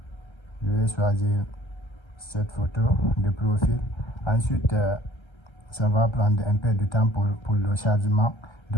Je vais choisir cette photo de profil. Ensuite, ça va prendre un peu de temps pour le chargement.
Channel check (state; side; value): late; right; 1.3 ms